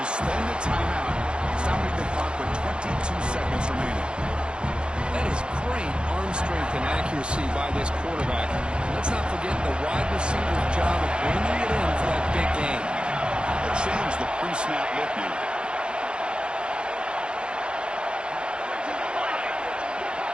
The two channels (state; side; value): late; left; 0.053 ms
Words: spend the timeout, stopping the clock with 22 seconds remaining. That is great arm strength and accuracy by this quarterback. Let's not forget the wide receiver's job of bringing it in for that big game. They'll change the pre-snap look now.